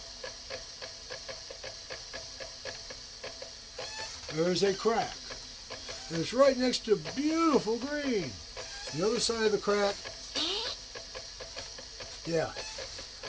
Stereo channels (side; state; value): both; identical; correlation 1.00